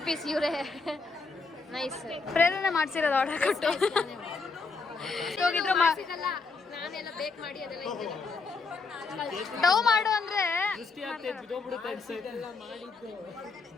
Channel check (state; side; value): quieter; right; 4.3 dB